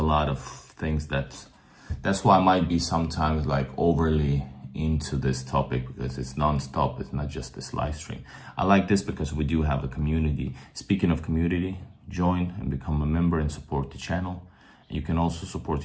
lot of things that's why I might be sometimes like overly into this topic, because it's non-stop. It's not just this live stream. I like this because we do have a community. Speaking of community, join and become a member and support the channel. You can also support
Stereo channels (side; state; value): both; identical; correlation 1.00